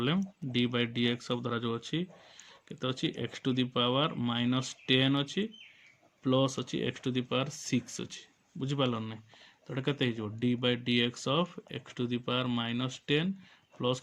d by dx of धरा जो अछि केते अछि x to the power minus 10 अछि प्लस अछि x टू द पावर 6 अछि बुझि पालन नै तो एटा केते हिजो d by dx of x to the power minus 10 plus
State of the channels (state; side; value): identical; both; correlation 1.00